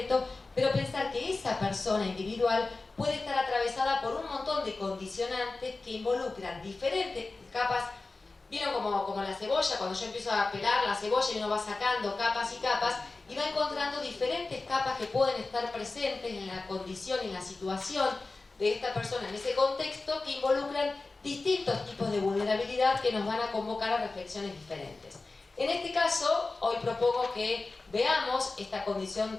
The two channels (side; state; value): right; quieter; 3.5 dB